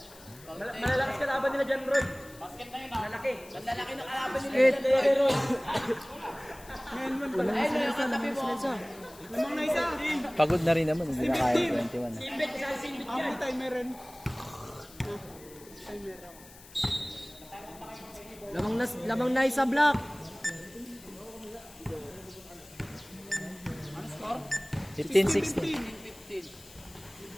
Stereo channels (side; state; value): left; noise; hiss, 20 dB below the sound